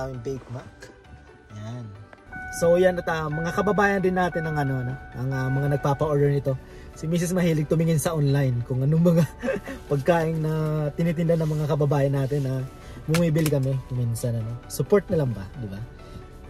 baked mac. Yan. So yan at mga kababayan din natin ng ang mga nagpapa-order nito. Si Mrs. mahilig tumingin sa online kung anong mga pagkain na tinitinda ng mga kababayan natin na bumibili kami minsan Support na lang ba, di ba?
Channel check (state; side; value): identical; both; correlation 1.00